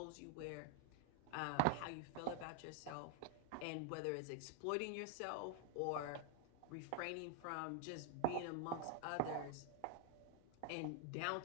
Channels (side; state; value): both; different; correlation 0.00